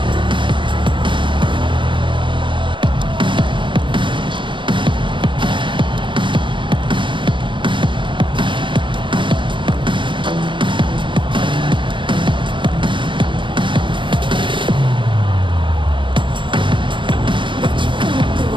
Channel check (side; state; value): left; late; 0.24 ms